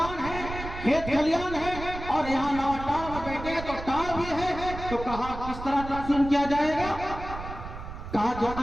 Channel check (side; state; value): right; noise; rumble, 10 dB below the sound